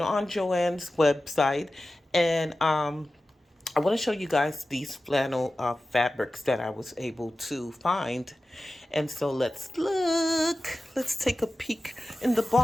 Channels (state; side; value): normal; both; correlation 0.95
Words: on Joann's website, and I want to show you guys these flannel fabrics that I was able to find. And so let's look. Let's take a peek in the